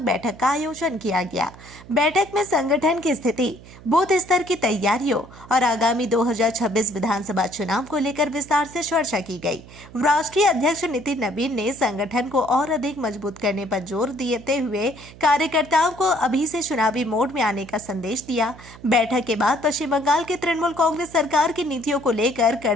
बैठक का आयोजन किया गया। बैठक में संगठन की स्थिति, बूथ स्तर की तैयारियों और आगामी 2026 विधानसभा चुनाव को लेकर विस्तार से चर्चा की गई। राष्ट्रीय अध्यक्ष नितिन नवीन ने संगठन को और अधिक मजबूत करने पर जोर देते हुए कार्यकर्ताओं को अभी से चुनावी मोड में आने का संदेश दिया। बैठक के बाद पश्चिम बंगाल की तृणमूल कांग्रेस सरकार की नीतियों को लेकर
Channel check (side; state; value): right; noise; hum, 19 dB below the sound